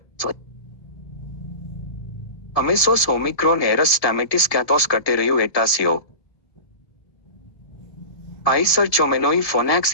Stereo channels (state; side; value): late; right; 1.7 ms